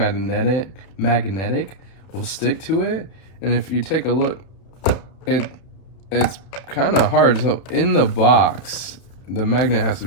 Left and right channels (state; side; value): late; right; 32 ms